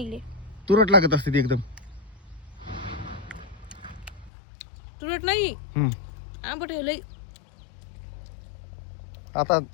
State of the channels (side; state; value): right; drops out; at 4.3 s